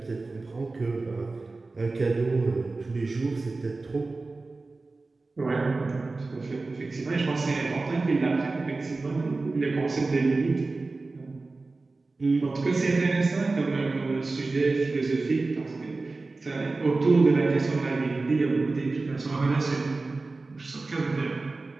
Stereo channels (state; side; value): quieter; left; 3.5 dB